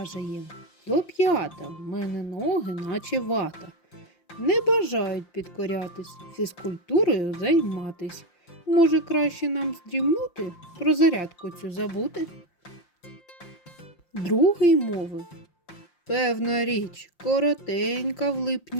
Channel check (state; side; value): late; right; 5.7 ms